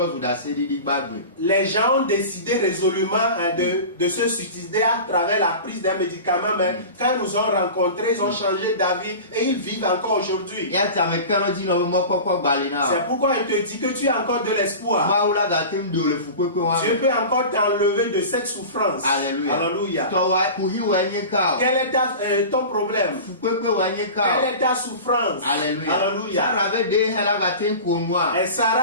Les gens ont décidé résolument de se suicider à travers la prise des médicaments, mais quand ils nous ont rencontrés, ils ont changé d'avis et ils vivent encore aujourd'hui. C'est pourquoi il te dit que tu as encore de l'espoir. Dieu peut encore t'enlever de cette souffrance. Alléluia. Quel est ton problème? Quelle est ta souffrance? Alléluia. Et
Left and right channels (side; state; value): both; inverted; correlation -0.33